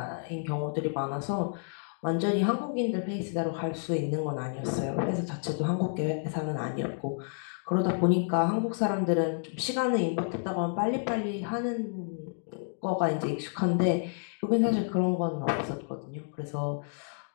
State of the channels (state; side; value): silent; right; digital silence